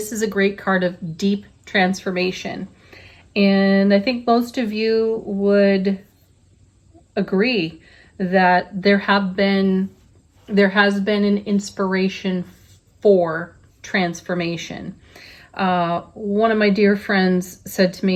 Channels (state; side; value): identical; both; correlation 1.00